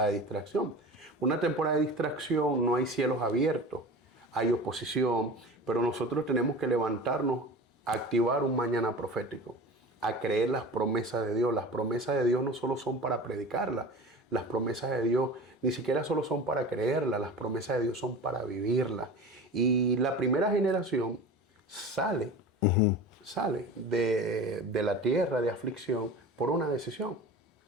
de distracción. Una temporada de distracción no hay cielos abiertos, hay oposición, pero nosotros tenemos que levantarnos a activar un mañana profético, a creer las promesas de Dios. Las promesas de Dios no solo son para predicarlas, las promesas de Dios ni siquiera solo son para creerlas, las promesas de Dios son para vivirlas. Y la primera generación sale de la tierra de aflicción por una decisión.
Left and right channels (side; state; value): both; normal; correlation 0.35